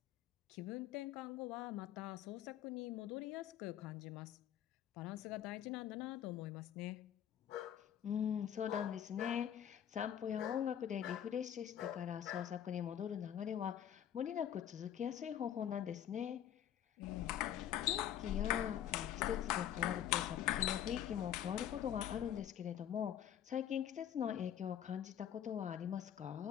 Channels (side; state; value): right; quieter; 10.2 dB